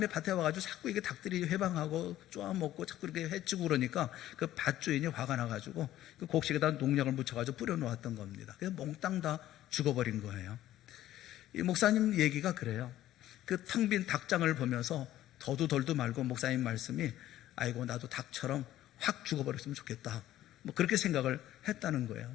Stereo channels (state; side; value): quieter; right; 13.6 dB